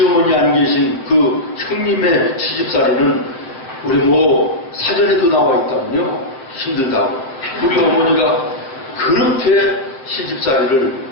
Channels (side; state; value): right; late; 7.5 ms